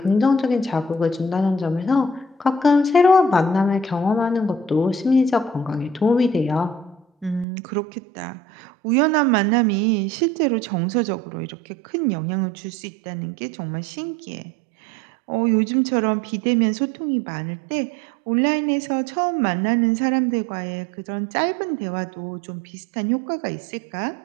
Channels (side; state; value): left; drops out; at 7.5 s